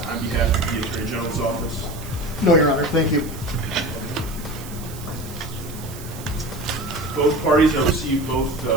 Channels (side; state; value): right; noise; hiss, 16 dB below the sound